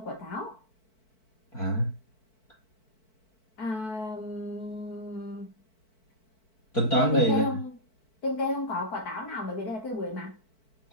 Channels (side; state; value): right; late; 4.5 ms